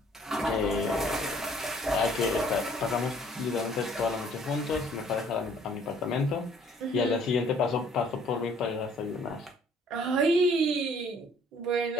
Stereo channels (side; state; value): both; normal; correlation 0.59